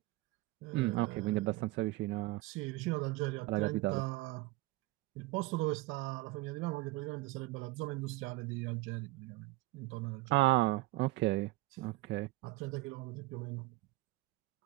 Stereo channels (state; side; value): quieter; left; 19.6 dB